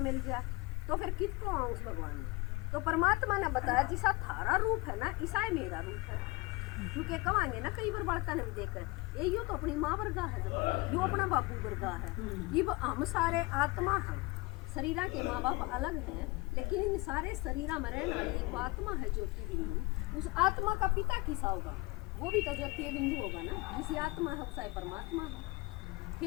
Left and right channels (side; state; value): right; quieter; 24.0 dB